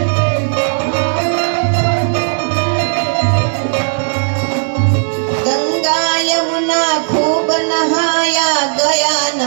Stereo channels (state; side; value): silent; left; 61 dB below the other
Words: गंगा यमुना खूब नहाया, गया